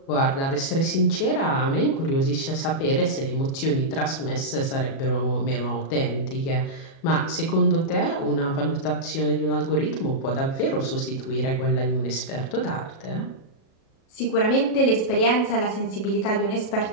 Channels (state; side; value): late; right; 37 ms